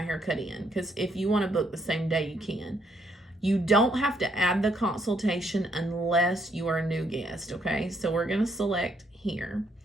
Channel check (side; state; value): both; normal; correlation 0.72